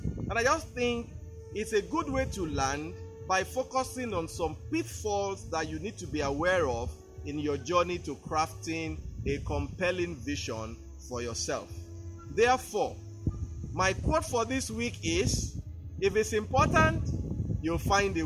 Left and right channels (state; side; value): identical; both; correlation 1.00